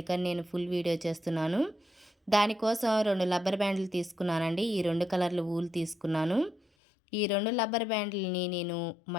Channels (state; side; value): drops out; right; at 6.6 s